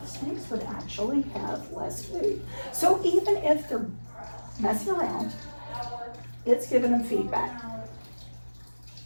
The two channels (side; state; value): both; inverted; correlation -1.00